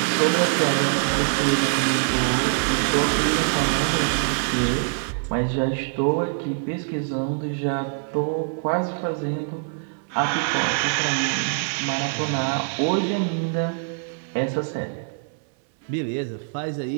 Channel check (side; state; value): left; silent; 63 dB below the other